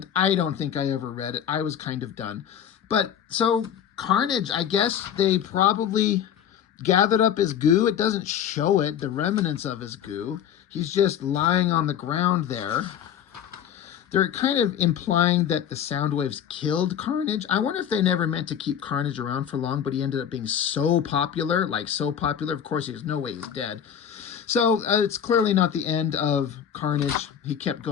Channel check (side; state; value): right; quieter; 9.1 dB